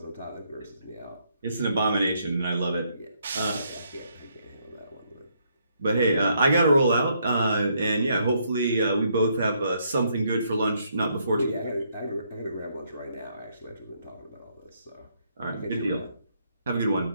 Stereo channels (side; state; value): both; inverted; correlation -0.73